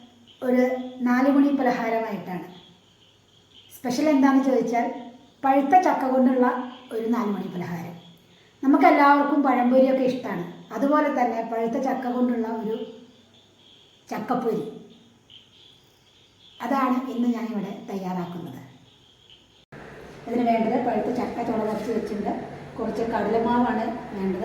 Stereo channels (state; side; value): identical; both; correlation 1.00